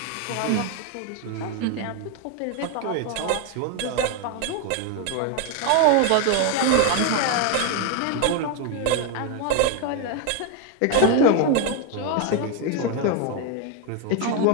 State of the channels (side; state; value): both; different; correlation 0.01